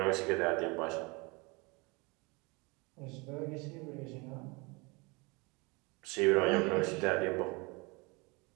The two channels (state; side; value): quieter; left; 27.6 dB